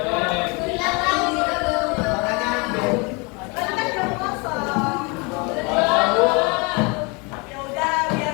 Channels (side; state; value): right; quieter; 29.8 dB